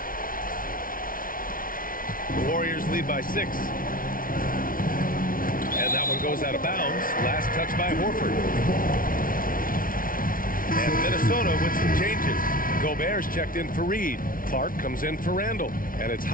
The Warriors lead by 6. And that one goes out of bounds. Last touch by Horford. And Minnesota with some changes. Gobert's checked in for Reed. Clark comes in for Randle. And it's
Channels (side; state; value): right; late; 0.41 ms